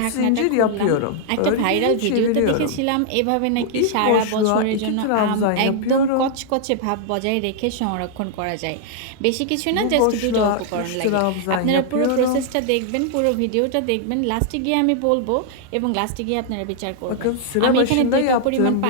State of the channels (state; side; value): different; both; correlation -0.01